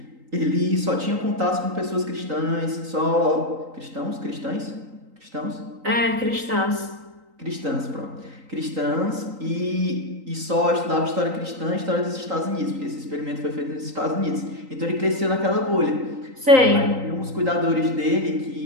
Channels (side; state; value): left; late; 3.9 ms